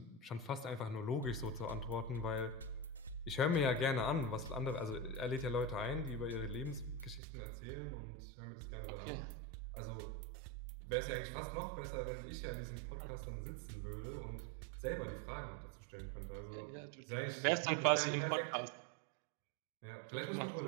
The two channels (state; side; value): drops out; left; at 7.2 s